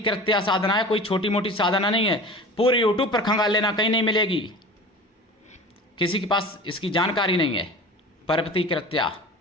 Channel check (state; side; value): normal; both; correlation 0.37